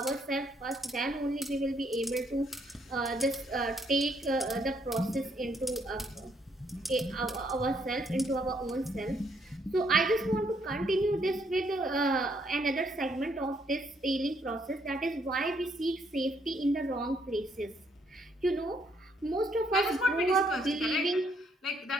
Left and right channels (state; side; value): normal; both; correlation 0.71